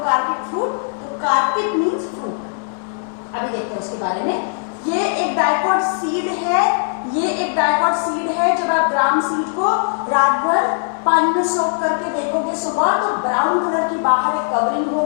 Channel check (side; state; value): right; silent; digital silence